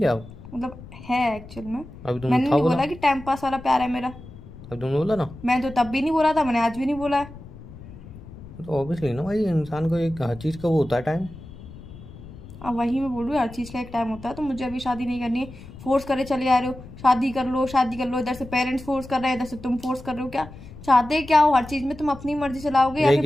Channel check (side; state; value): left; noise; rumble, 16 dB below the sound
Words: मतलब है एक्चुअल में। अभी तुमने मैंने था नहीं बोला, बोला कि टाइम पास वाला प्यार है मेरा। अभी तुमने बोला ना। मैं तो तब भी नहीं बोला था, मैंने आज भी नहीं बोला है। तो ऑब्वियसली ना भाई, इंसान को एक हर चीज़ का वो होता है टाइम। अब वही मैं बोल रही हूँ, हर चीज़ का एक टाइम होता है। तो मुझे अभी शादी नहीं करनी है। फोर्स करे चले आ रहे हो, शादी कर लो शादी कर लो। इधर से पेरेंट्स फोर्स कर रहे हैं, इधर से तुम फोर्स कर रहे हो। क्या चाहते क्या हो? हर चीज में तुम अपनी मर्जी चलाओगे या यही फिर